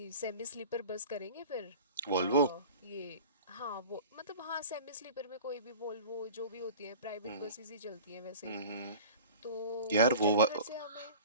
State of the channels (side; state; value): both; inverted; correlation -0.39